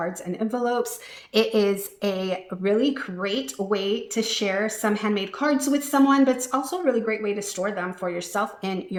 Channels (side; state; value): both; identical; correlation 1.00